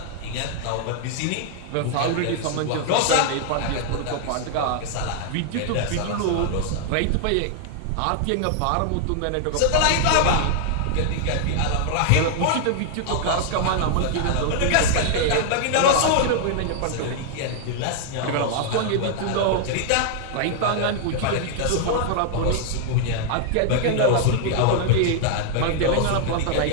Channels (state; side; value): different; both; correlation 0.00